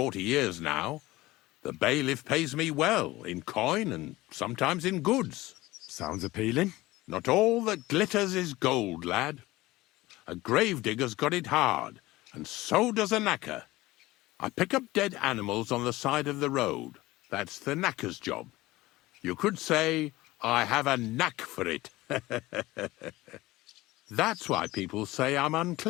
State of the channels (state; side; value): quieter; right; 18.8 dB